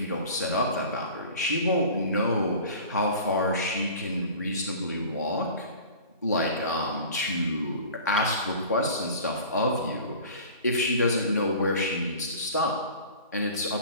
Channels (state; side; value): inverted; both; correlation -0.41